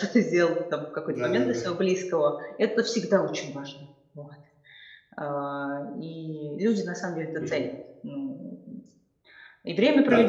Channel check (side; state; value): both; identical; correlation 1.00